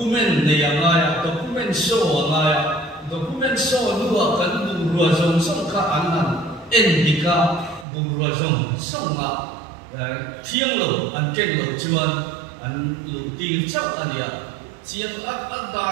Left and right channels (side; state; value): left; drops out; at 7.9 s